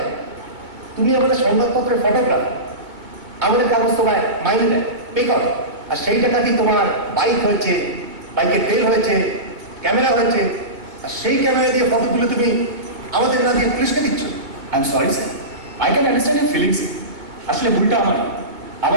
তুমি আমাদের সংবাদপত্রের ফটোগ্রাফার, আমাদের কাগজ তোমায় মাইনে দেয়, পে করো, আর সেই টাকাতেই তোমার বাইক হয়েছে, বাইকের তেল হয়েছে, ক্যামেরা হয়েছে, আর সেই ক্যামেরা দিয়ে ফটো তুলে তুমি আমাদের না দিয়ে পুলিশকে দিচ্ছ। I am sorry sir, I can understand your feelings. আসলে ভুলটা আমার।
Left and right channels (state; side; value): late; left; 2.2 ms